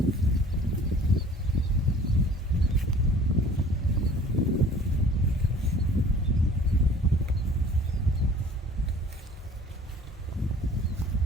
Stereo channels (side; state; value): both; normal; correlation 0.49